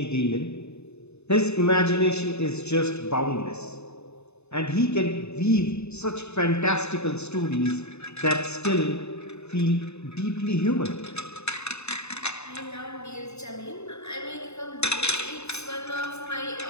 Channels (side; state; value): right; late; 0.81 ms